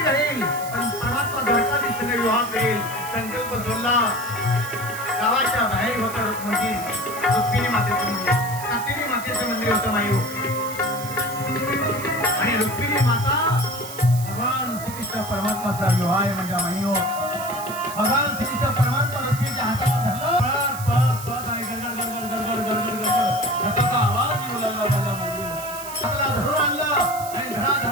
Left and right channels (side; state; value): right; noise; hiss, 12 dB below the sound